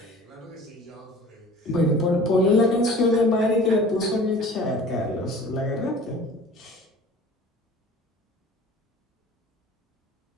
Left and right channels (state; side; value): normal; both; correlation 0.44